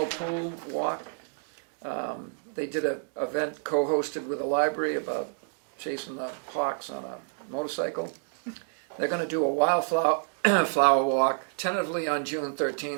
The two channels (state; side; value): silent; left; digital silence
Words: pool walk. They did an event co-hosted with the library about chasing the hawks on a motorcycle. They're going to do a wildflower flower walk, tentatively on June